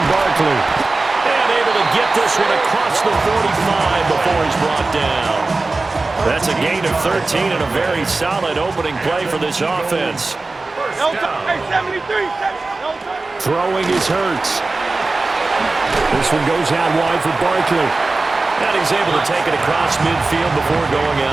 Barkley. And able to get this one across the 45 before he's brought down. That's a gain of 13 and a very solid opening play for this offense. Throwing is Hurts. This one goes out wide for Barkley. And he's able to take it across midfield before going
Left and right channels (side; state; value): left; quieter; 3.4 dB